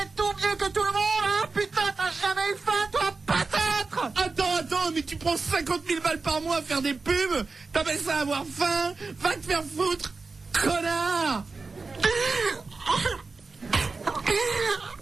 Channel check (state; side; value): quieter; left; 4.1 dB